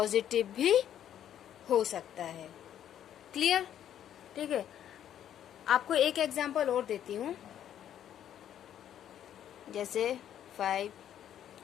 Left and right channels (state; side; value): quieter; right; 10.4 dB